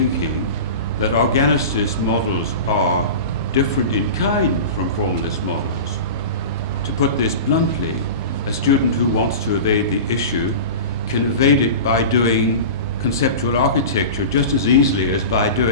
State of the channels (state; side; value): inverted; both; correlation -0.31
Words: that organicist models are different in kind from formalist models. To put this bluntly, a student who wants to evade the issue can evade it by doing conceptual architecture just as easily as by